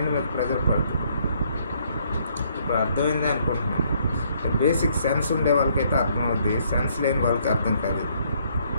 మీద ప్రెజర్ పడుతుంది. ఇప్పుడు అర్థమైందే అనుకుంటున్నాను. బేసిక్ సెన్స్ ఉండే వాళ్ళకైతే అర్థమవుద్ది, సెన్స్ లేని వాళ్ళకి అర్థం కాదు.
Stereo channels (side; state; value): both; inverted; correlation -0.67